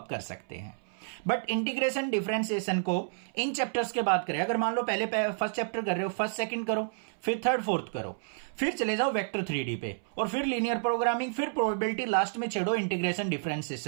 कर सकते हैं। बट इंटीग्रेशन डिफरेंशिएशन को इन चैप्टर्स के बाद करें। अगर मान लो पहले फर्स्ट चैप्टर कर रहे हो, फर्स्ट सेकंड करो, फिर थर्ड फोर्थ करो, फिर चले जाओ वेक्टर 3D पे, और फिर लीनियर प्रोग्रामिंग, फिर प्रोबेबिलिटी, लास्ट में छेड़ो इंटीग्रेशन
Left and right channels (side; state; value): left; silent; 58 dB below the other